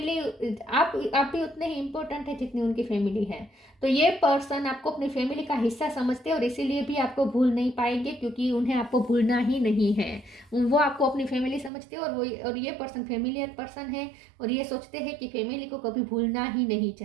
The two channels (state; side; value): drops out; left; at 11.7 s